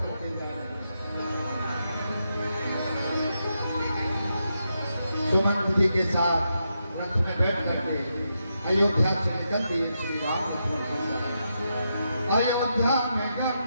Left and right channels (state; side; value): inverted; both; correlation -0.84